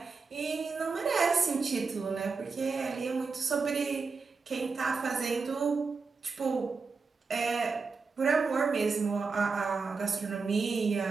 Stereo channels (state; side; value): quieter; left; 4.7 dB